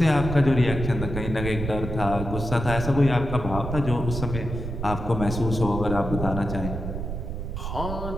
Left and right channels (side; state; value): right; noise; rumble, 5 dB below the sound